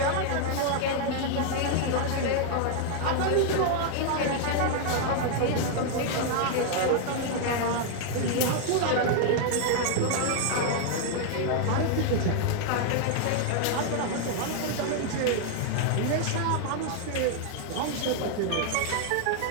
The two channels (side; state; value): both; different; correlation 0.00